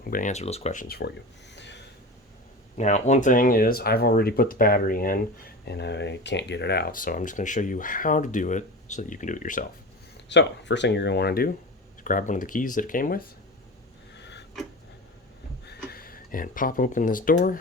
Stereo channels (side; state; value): both; normal; correlation 0.29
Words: I'm going to answer those questions for you. Now, one thing is I've already put the battery in and I can't get it out. So I'm just going to show you how to do it so that you can do it yourself. So first thing you're going to want to do is grab one of the keys that it came with and pop open this